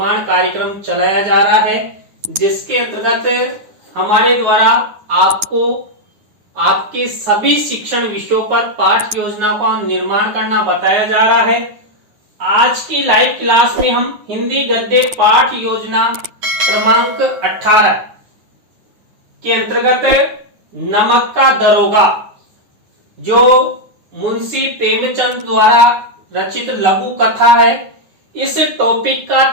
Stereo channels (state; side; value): late; left; 9.6 ms